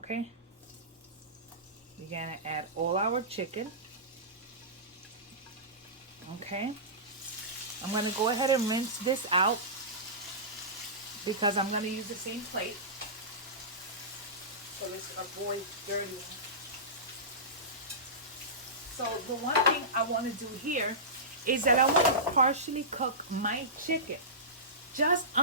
We're going to add all our chicken. Okay. I'm going to go ahead and rinse this out because I'm going to use the same plate. So let's avoid dirty. So the one thing I want to do here is that I want to partially cook my chicken. Just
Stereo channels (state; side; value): normal; both; correlation -0.20